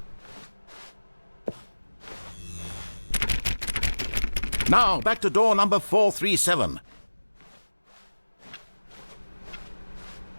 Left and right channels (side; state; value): both; inverted; correlation -1.00